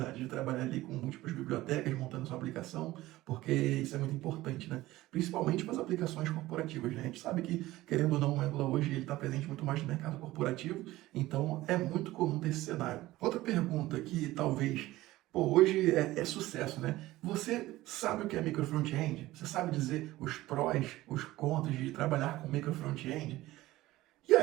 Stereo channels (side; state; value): left; quieter; 17.2 dB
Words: de trabalhar ali com múltiplas bibliotecas, montando sua aplicação, porque isso é muito importante, né? Principalmente para as aplicações corporativas, né? A gente sabe que, querendo ou não, o Angular hoje ele está presente muito mais no mercado corporativo, então é muito comum ter esse cenário. Outra pergunta que talvez hoje é sucesso, né? Você sabe o que é micro front-end? Você sabe dizer os prós, os contras de trabalhar com micro front-end? E